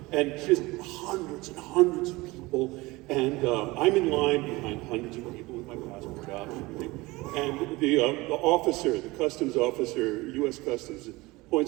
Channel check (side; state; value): left; quieter; 21.7 dB